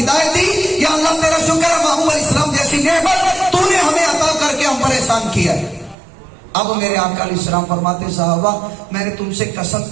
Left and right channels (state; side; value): drops out; left; at 6.0 s